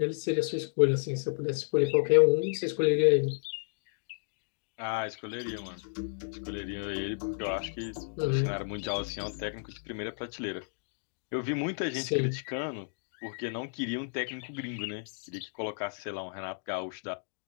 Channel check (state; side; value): silent; right; digital silence